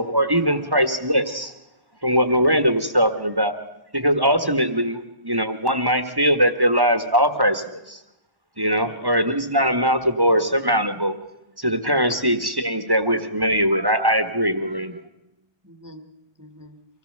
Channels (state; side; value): late; left; 1.1 ms